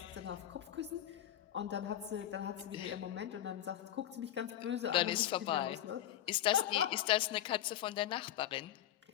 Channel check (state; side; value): quieter; right; 11.9 dB